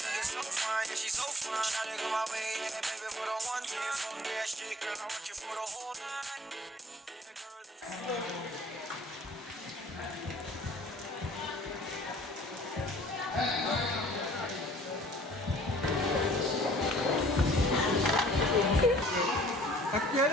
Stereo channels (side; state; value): both; normal; correlation 0.52